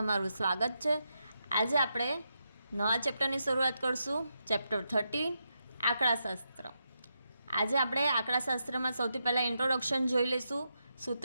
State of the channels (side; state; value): both; inverted; correlation -0.85